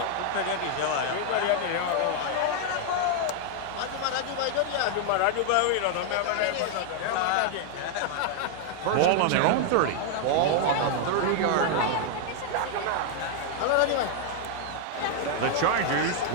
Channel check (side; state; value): both; different; correlation 0.00